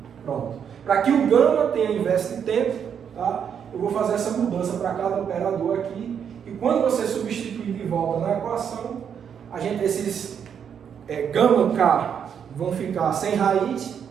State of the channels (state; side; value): quieter; left; 7.8 dB